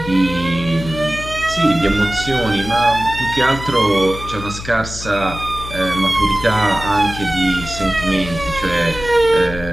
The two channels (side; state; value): left; noise; hum, 11 dB below the sound